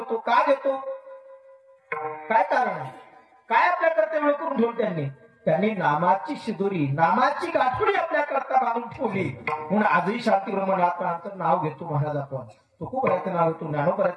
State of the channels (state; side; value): identical; both; correlation 1.00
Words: का घेतो, काय कारण आहे, काय आपल्या करता वेळ करून ठेवलं त्यांनी नामाची शिदुरी, नामाची गाठोडी आपल्या करता बांधून ठेवली. म्हणून आजही शांतिगृह नाथ महाराजांचं नाव घेतो महाराज आपण. तुकोबराचं नाव घेतो,